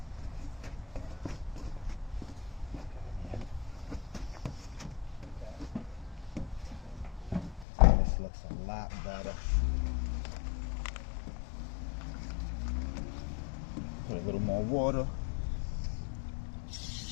This looks a lot better. Put a little more water.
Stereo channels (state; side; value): drops out; right; at 7.7 s